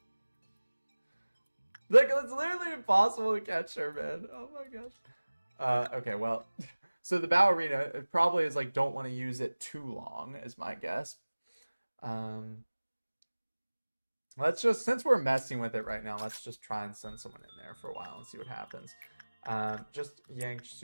Like, it's literally impossible to catch her, man. Oh my gosh. Okay, well... So the ballerina, it probably is like, don't want to use it too long, is my guess. Let's just, since we're messing with it right now, let's just try and send someone in there for a while and see what happens. Just Yang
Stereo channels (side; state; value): both; inverted; correlation -1.00